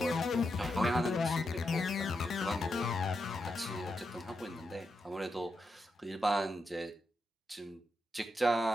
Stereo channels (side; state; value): both; normal; correlation 0.85